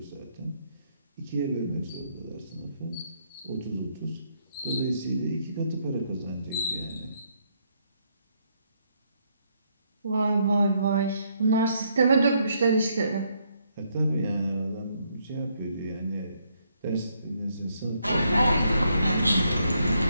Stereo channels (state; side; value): inverted; both; correlation -0.74